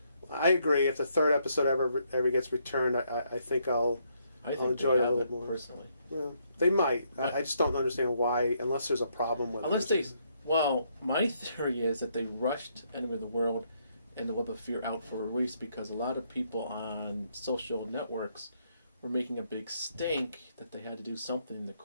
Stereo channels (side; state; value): both; inverted; correlation -0.73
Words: I agree. If the third episode ever gets returned, I think I'll enjoy it a little more. Personally, yeah, they might. I just don't understand why, unless there's a problem with it. Well, my theory is that they rushed Enemy of the World and the Web of Fear out for release because a lot of people on social networks were making a big stink that they had to do something to